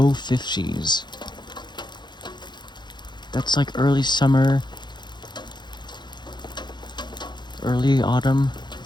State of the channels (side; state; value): right; late; 0.21 ms